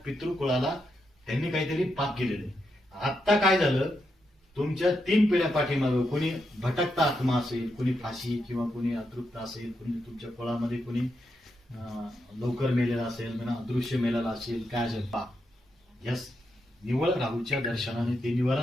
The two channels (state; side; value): normal; both; correlation 0.83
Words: पितृकुळाला त्यांनी काहीतरी पाप केलेलं आहे. आत्ता काय झालं, तुमच्या 3 पिढ्या पाठीमागं कोणी भटकता आत्मा असेल, कोणी फाशी किंवा कोणी अतृप्त असेल, कोणी तुमच्या कुळामध्ये कोणी लवकर मेलेला असेल, अदृश्य मेलेला असेल, काय असेल पाप, यस निवळ राहूच्या दर्शनाने ते